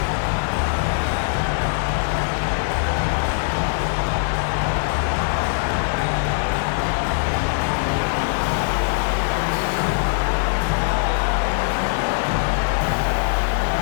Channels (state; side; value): silent; right; digital silence